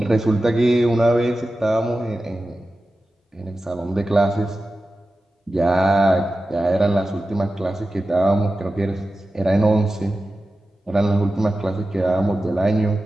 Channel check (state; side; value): normal; both; correlation 0.93